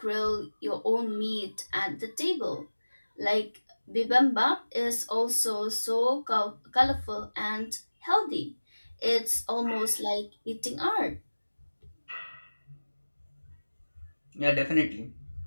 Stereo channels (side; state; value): both; inverted; correlation -1.00